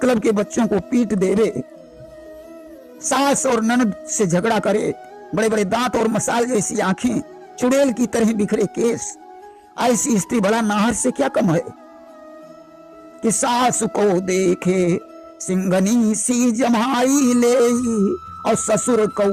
के बच्चों को पीट देवे, सास और ननद से झगड़ा करे, बड़े बड़े दांत और मसाल जैसी आंखें, चुड़ैल की तरह बिखरे केस। ऐसी स्त्री भला नाहर से क्या कम है। कि सास को देखे सिंगनी सी जमाई ले, और ससुर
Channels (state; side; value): identical; both; correlation 1.00